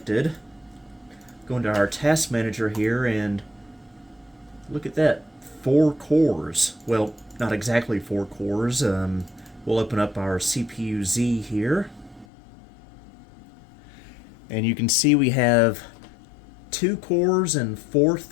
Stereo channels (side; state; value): right; drops out; at 12.2 s